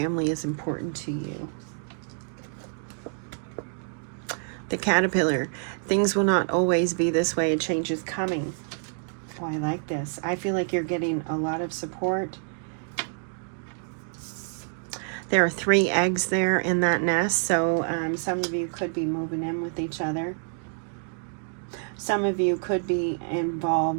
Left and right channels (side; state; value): left; silent; 56 dB below the other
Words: is important to you. The caterpillar. Things will not always be this way. A change is coming. Oh, I like this. I feel like you're getting a lot of support. There are 3 eggs there in that nest, so some of you could be moving in with each other. Some of you could be